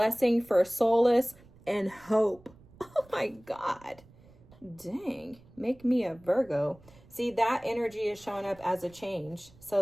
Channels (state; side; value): noise; right; rumble, 25 dB below the sound